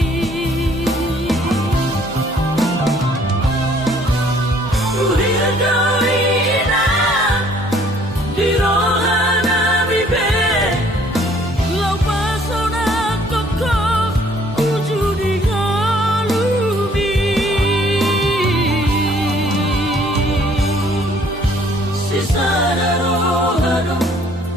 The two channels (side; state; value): both; normal; correlation 0.60